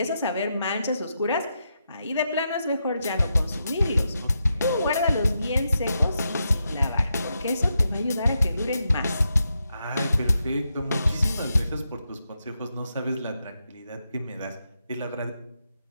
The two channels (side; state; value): both; inverted; correlation -0.84